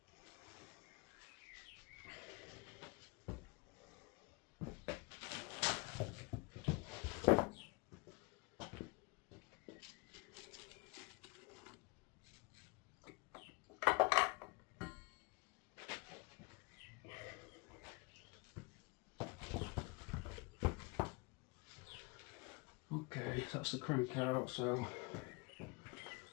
that's the crank out. So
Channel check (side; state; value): right; quieter; 29.0 dB